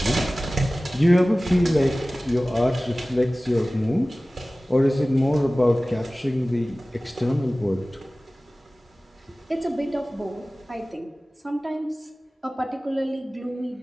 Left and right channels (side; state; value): both; normal; correlation 0.97